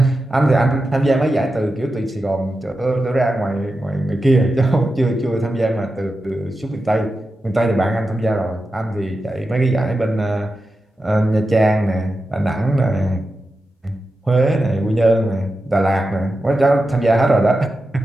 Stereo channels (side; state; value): both; normal; correlation 0.91